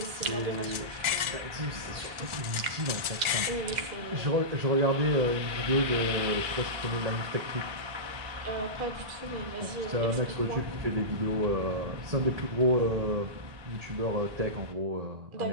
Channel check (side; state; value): left; late; 1.4 ms